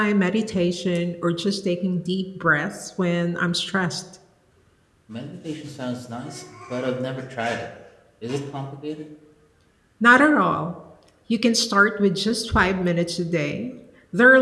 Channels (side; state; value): both; identical; correlation 1.00